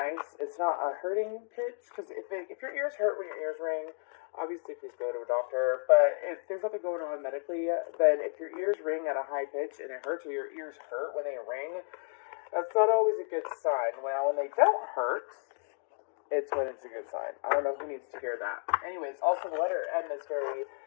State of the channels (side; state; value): right; silent; 56 dB below the other